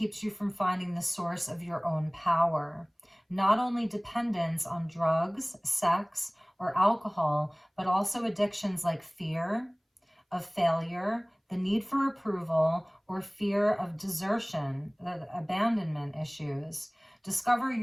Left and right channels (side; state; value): both; identical; correlation 1.00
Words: you from finding the source of your own power. Not only dependence on drugs, sex, or alcohol, but also addictions like fear of failure, the need for approval, or fear of desertion, abandonment issues. Discover